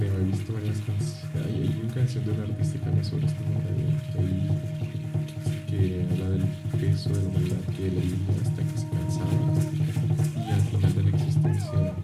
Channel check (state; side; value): identical; both; correlation 1.00